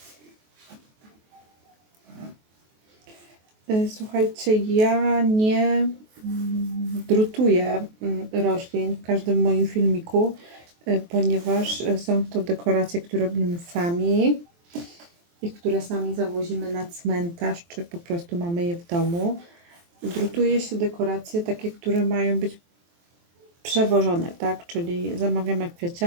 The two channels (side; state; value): left; late; 23 ms